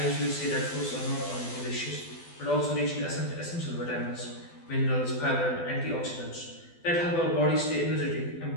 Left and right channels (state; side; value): late; right; 12 ms